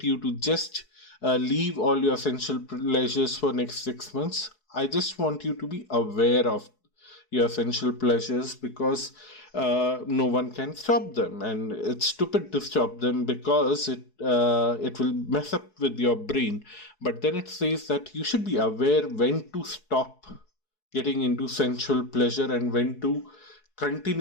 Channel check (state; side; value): late; right; 4.7 ms